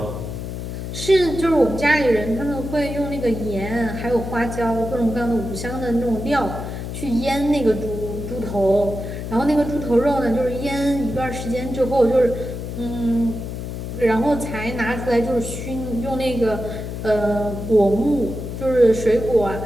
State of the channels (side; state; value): left; noise; hum, 7 dB below the sound